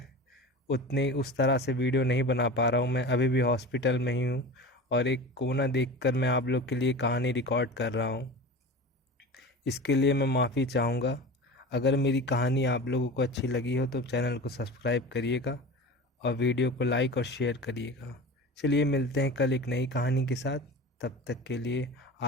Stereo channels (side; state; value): both; normal; correlation 0.32